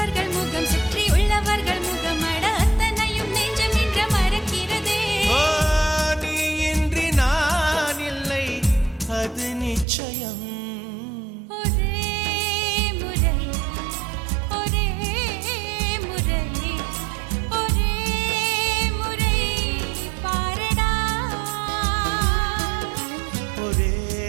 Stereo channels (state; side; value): drops out; left; at 9.9 s